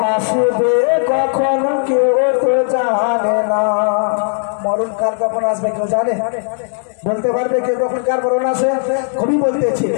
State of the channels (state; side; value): silent; right; digital silence